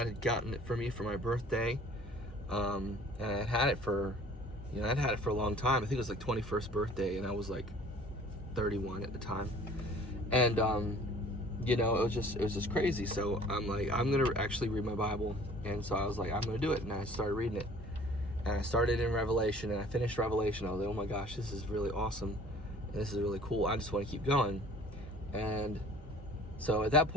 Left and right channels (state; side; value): normal; both; correlation 0.51